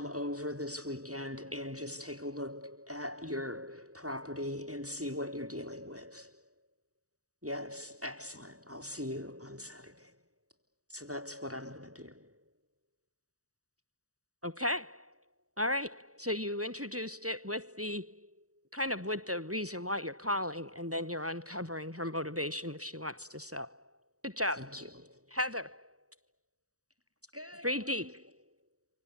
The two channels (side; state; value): left; late; 0.66 ms